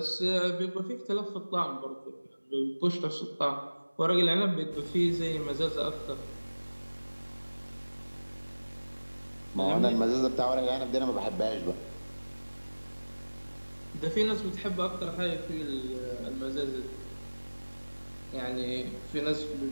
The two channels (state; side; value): inverted; both; correlation -1.00